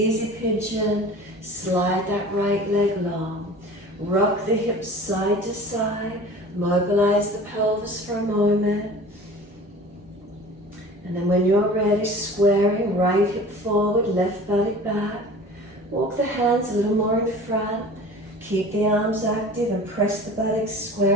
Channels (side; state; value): both; normal; correlation 0.41